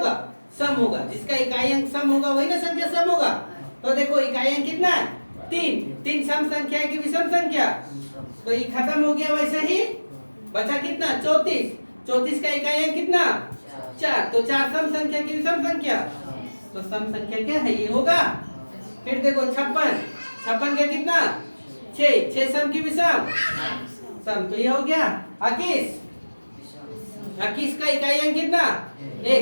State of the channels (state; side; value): inverted; both; correlation -1.00